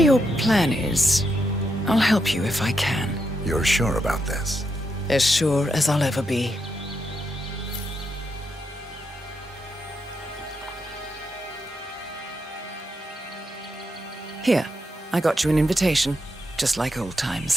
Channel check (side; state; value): both; normal; correlation 0.82